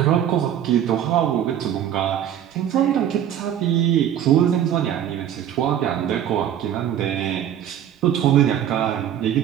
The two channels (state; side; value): quieter; left; 10.4 dB